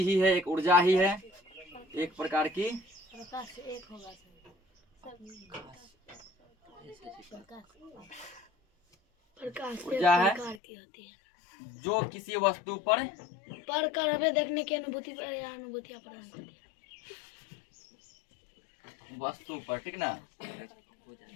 ही है, एक ऊर्जा ही है, एक प्रकार की ऊर्जा है जो किसी वस्तु पर कर हमें देखने की अनुभूतियां प्रदान करती है। वस्तु पर, ठीक ना,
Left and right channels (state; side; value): drops out; right; at 10.6 s